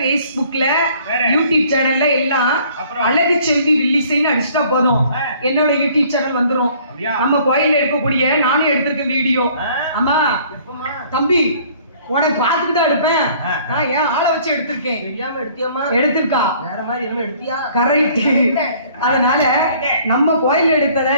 யூடியூப் சேனல்ல எல்லாம் அழகு செல்வி வில்லிசைன்னு அடிச்சுட்டா போதும், என்னோட யூடியூப் சேனல் வந்துரும். நம்ம கோயில்ல எடுக்கக்கூடிய நானும் எடுத்திருக்கேன் வீடியோ. ஆமா தம்பி, உனக்கு பார்த்துட்டு தான் எடுப்பேன். நான் ஏன் ஆளை வச்சு எடுத்திருக்கேன். தெரியாம எடுத்தியாமா? எடுத்திருக்கா வேற மாதிரி என்ன எடுத்தியா? கரெக்ட். அதனால நம்ம கோயில் எடுத்தத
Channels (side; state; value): both; inverted; correlation -0.56